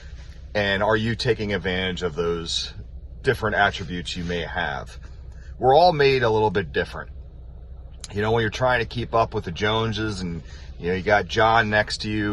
And are you taking advantage of those different attributes you may have? We're all made a little bit different. When you're trying to keep up with the Joneses and, you got John next to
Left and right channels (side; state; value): both; identical; correlation 1.00